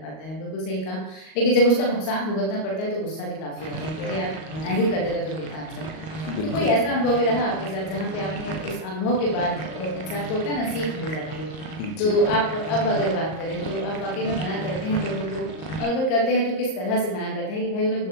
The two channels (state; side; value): late; right; 38 ms